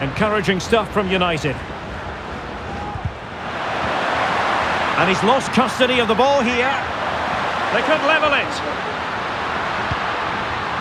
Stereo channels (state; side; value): identical; both; correlation 1.00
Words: Encouraging stuff from United. And he's lost custody of the ball here. They could level it.